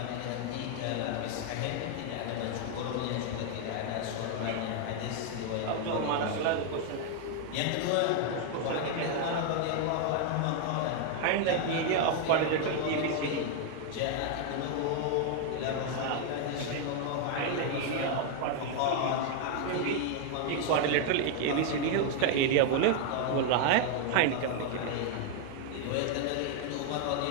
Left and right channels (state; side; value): different; both; correlation 0.00